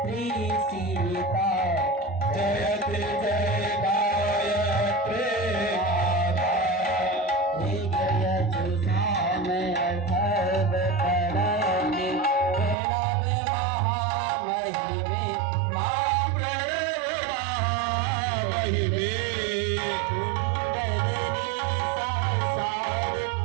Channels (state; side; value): drops out; left; at 12.8 s